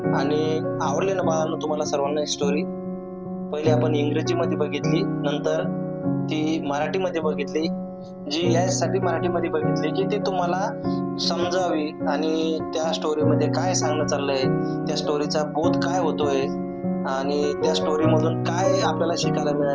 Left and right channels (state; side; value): identical; both; correlation 1.00